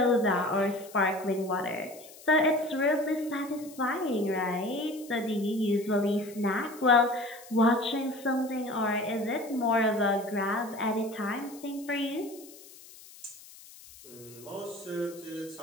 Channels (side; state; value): left; noise; hiss, 20 dB below the sound